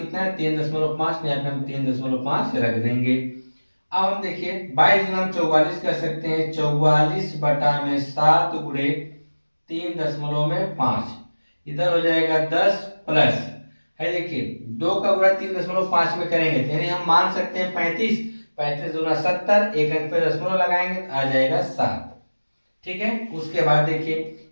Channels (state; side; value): inverted; both; correlation -1.00